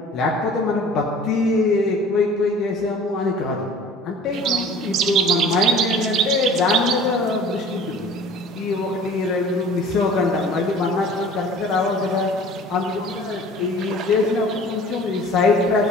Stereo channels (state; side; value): normal; both; correlation 0.46